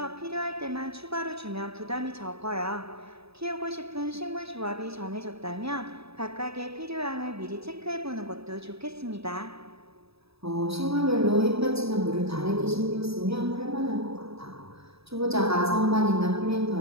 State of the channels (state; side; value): late; left; 0.78 ms